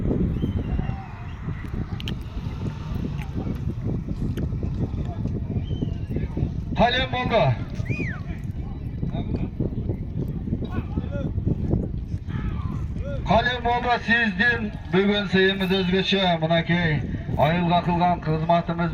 Kalem bolda. Kalem bolda sizdin bugün seyimiz özgeçe mınakey. Ayılga kılgan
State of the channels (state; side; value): identical; both; correlation 1.00